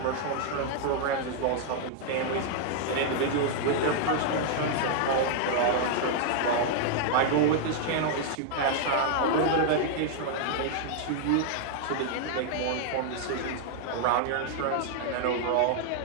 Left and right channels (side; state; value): both; different; correlation -0.01